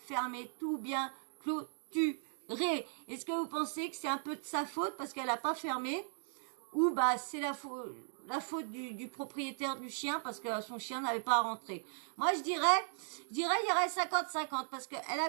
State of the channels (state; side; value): silent; left; digital silence